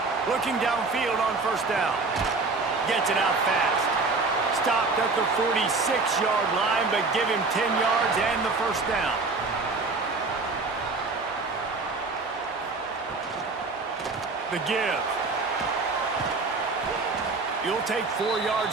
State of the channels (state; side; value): quieter; left; 3.9 dB